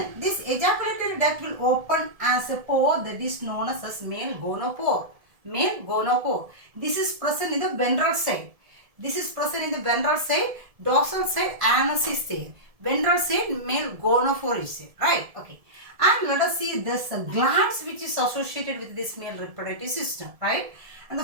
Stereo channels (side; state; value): left; late; 1.7 ms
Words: this ejaculatory duct will open as a pore that is known as male gonopore. Male gonopore. This is present in the ventral side. This is present in the ventral side. Dorsal side anus is there. Ventral side male gonopore is there. Right. Okay. And let us see this glands which is associated with this male reproductive system. Right. And the